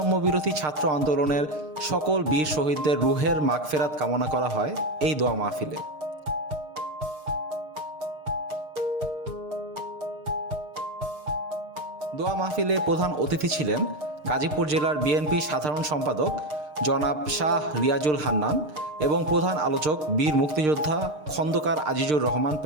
বিরোধী ছাত্র আন্দোলনের সকল বীর শহীদদের রুহের মাগফেরাত কামনা করা হয় এই দোয়া মাহফিলে। দোয়া মাহফিলে প্রধান অতিথি ছিলেন গাজীপুর জেলার বিএনপি সাধারণ সম্পাদক জনাব শাহ রিয়াজুল হান্নান এবং প্রধান আলোচক বীর মুক্তিযোদ্ধা খন্দকার আজিজুর রহমান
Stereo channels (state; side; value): late; left; 6.6 ms